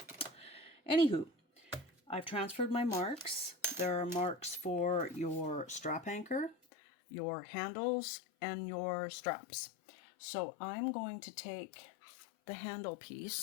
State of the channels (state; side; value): drops out; right; at 6.6 s